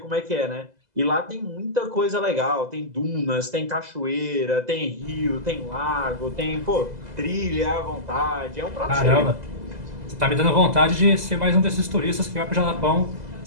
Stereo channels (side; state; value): left; late; 2.0 ms